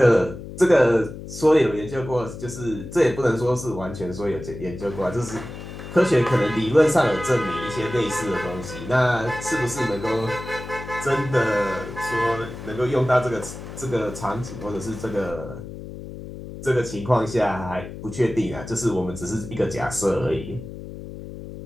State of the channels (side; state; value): left; noise; hum, 11 dB below the sound